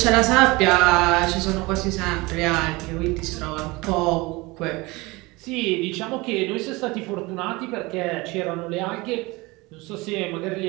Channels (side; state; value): left; quieter; 23.3 dB